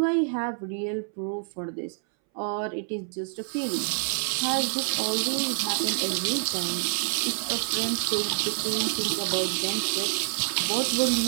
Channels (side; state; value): left; silent; 60 dB below the other